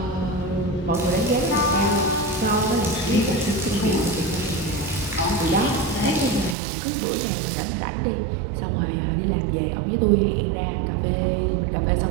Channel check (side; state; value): left; drops out; at 6.6 s